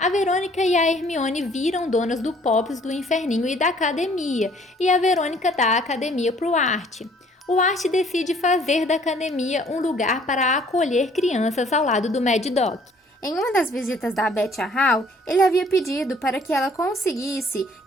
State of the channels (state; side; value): normal; both; correlation 0.58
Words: Verônica e a Hermione viram donas do Pops, do Inferninho e da academia, e a Verônica dá a academia para o Art. O Art decide fazer da academia um lugar para acolher crianças ao lado do Mad Doc. Em uma das visitas da Beth a Hal, ele havia pedido para que ela conseguisse